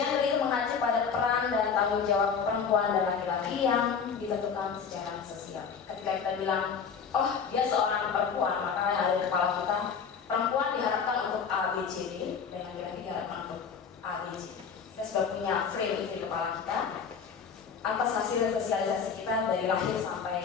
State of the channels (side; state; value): right; quieter; 6.3 dB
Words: itu mengacu pada peran dan tanggung jawab perempuan dan laki-laki yang ditentukan secara sosial. Ketika kita bilang, oh dia seorang perempuan, maka yang ada di kepala kita, perempuan diharapkan untuk A, B, C, D, dan laki-laki diharapkan untuk A, B, C. Kita sudah punya frame itu di kepala kita atas hasil sosialisasi kita dari lahir